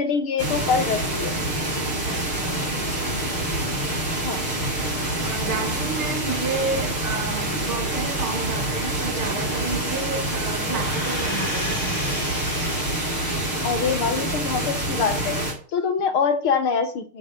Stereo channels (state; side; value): late; right; 6.6 ms